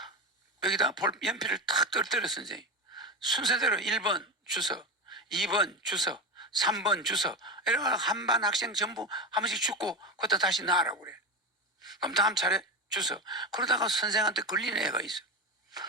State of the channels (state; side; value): normal; both; correlation 0.19